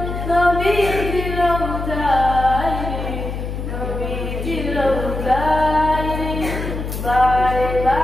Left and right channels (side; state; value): left; noise; hum, 5 dB below the sound